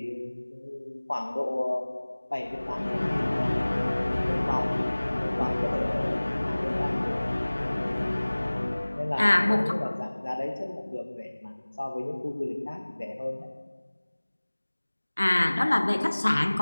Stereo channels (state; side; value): inverted; both; correlation -1.00